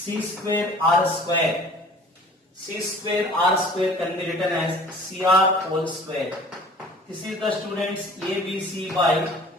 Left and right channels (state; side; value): normal; both; correlation 0.48